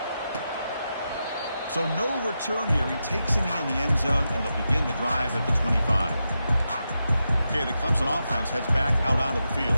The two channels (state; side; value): inverted; both; correlation -0.88